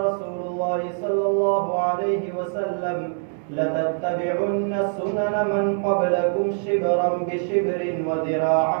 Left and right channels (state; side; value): silent; left; digital silence